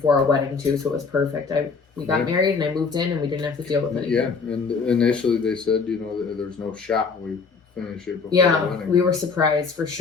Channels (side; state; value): right; quieter; 5.0 dB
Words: our wedding too. So it was perfect. We got Yeah. married, and I moved in, and we didn't have to deal with anything. Yeah, and initially they said, that there's no shot we finish it before the Yeah, wedding. we were surprised for